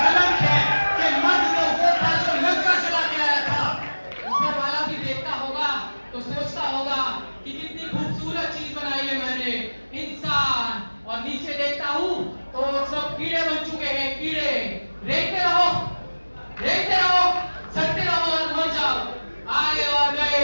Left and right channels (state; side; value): inverted; both; correlation -1.00